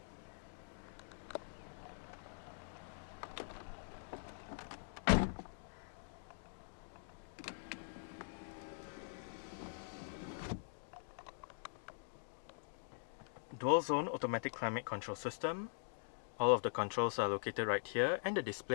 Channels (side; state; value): right; silent; digital silence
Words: Dual zone automatic climate control system. All of the controls are located right here and the